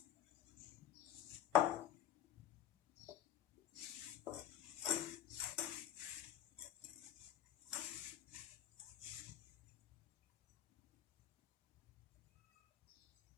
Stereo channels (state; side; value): quieter; right; 10.7 dB